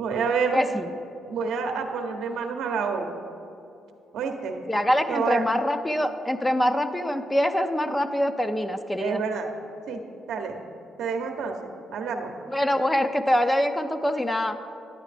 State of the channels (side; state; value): both; normal; correlation 0.86